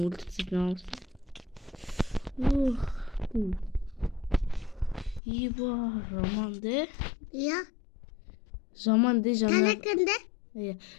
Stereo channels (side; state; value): right; drops out; at 5.2 s